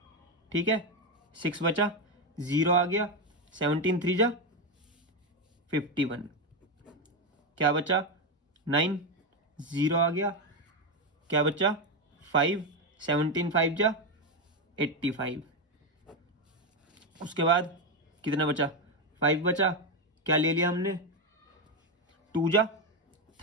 ठीक है। 6 बचा, 0 आ गया, 17 3 जा 51, क्या बचा 9, 0 आ गया, क्या बचा 5, 17 5 जा 85। उसके बाद कितना बचा, 5 बचा, क्या ले लिया हमने, 2 जा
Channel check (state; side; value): normal; both; correlation 0.09